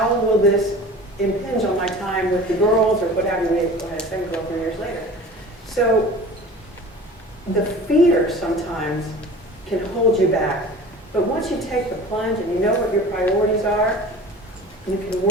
will this impinge on my time with the girls or what have you? We had a second girl 3 years later. So the fear sometimes can hold you back. But once you take the plunge and you know what your priorities are, you can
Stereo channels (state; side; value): normal; both; correlation 0.40